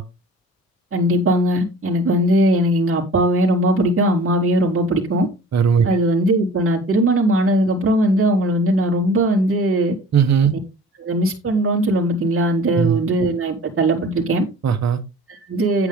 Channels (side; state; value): both; normal; correlation 0.45